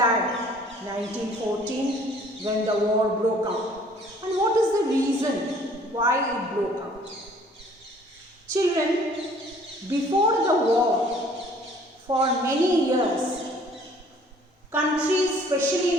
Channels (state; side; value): normal; both; correlation 0.56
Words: 1914 when the war broke out. And what is the reason why it broke out? Children, before the war, for many years, countries,